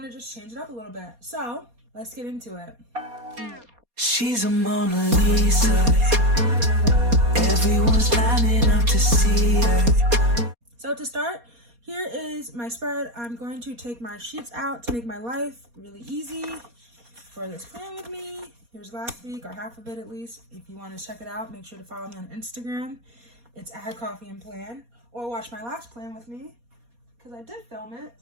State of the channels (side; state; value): left; late; 4.2 ms